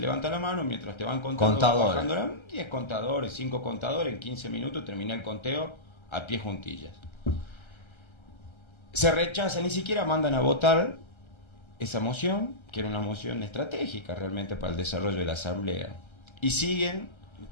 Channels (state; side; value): late; right; 1.3 ms